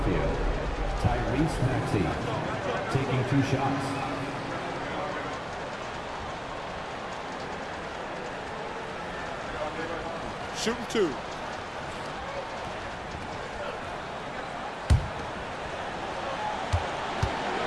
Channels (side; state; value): both; identical; correlation 1.00